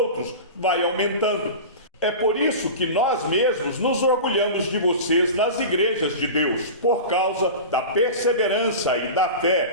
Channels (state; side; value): inverted; both; correlation -0.30